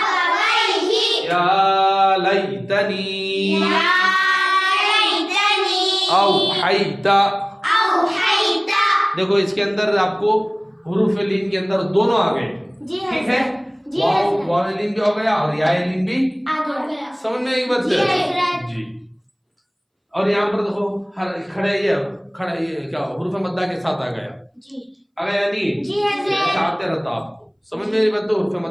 या लैतनी, या लैतनी, औहैता। औहैता। देखो इसके अंदर आपको हुरूफ लीन के अंदर दोनों आ गए, जी ठीक है, वाव लीन भी हो गया और या लीन भी आ गया। समझ में एक बात जी। और यहाँ पर देखो हर खड़े ये क्या हुरूफ मद्दा के साथ आ गया, जी आ गया नहीं, जी हज़रत। आते रहता आपको समझ में नहीं बात। हुरूफ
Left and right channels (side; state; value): both; identical; correlation 1.00